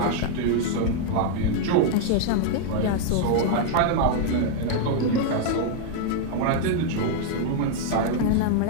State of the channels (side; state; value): both; different; correlation 0.00